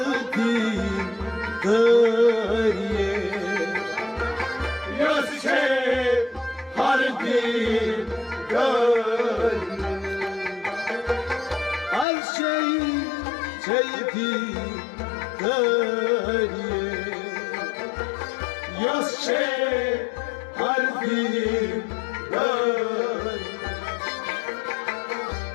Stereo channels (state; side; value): drops out; right; at 12.1 s